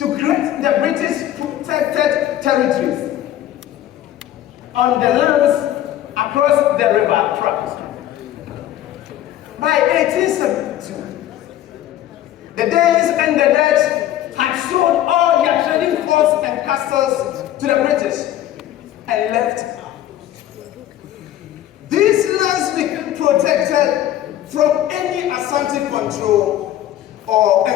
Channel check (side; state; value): right; quieter; 12.6 dB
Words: create the British protected territories on the lands across the river Trent. By 1872, the Danes and the Dutch had sold all their trading forts and castles to the British and left. These lands became protected from any Asante control or